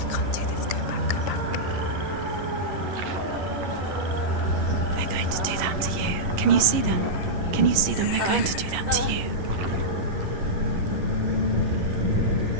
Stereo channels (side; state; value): left; late; 11 ms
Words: Can't do this. Go back, go back. They're going to do that to you. Can you see them? Can you see them? They're going to do that to you.